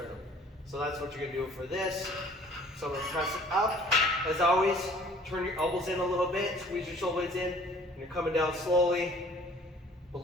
So that's what you're gonna do for this. So I'm gonna press it up. As always, turn your elbows in a little bit, squeeze your shoulder blades in, and you're coming down slowly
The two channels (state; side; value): normal; both; correlation 0.53